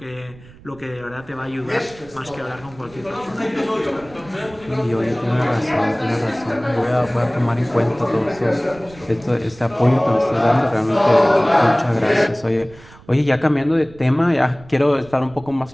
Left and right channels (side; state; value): right; noise; rumble, 22 dB below the sound